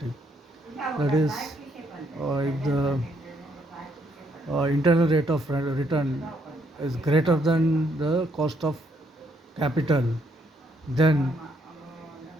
That is, if the internal rate of return is greater than the cost of capital, then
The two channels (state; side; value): normal; both; correlation 0.72